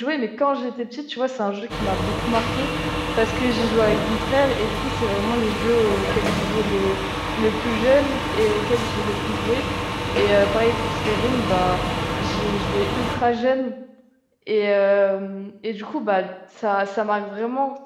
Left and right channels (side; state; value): both; identical; correlation 1.00